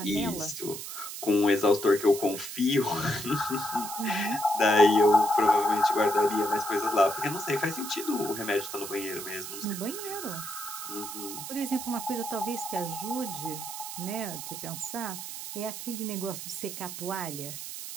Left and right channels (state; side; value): noise; right; hiss, 8 dB below the sound